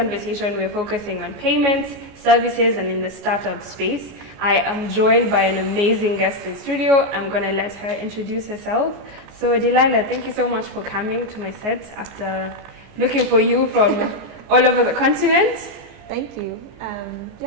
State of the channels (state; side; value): late; left; 14 ms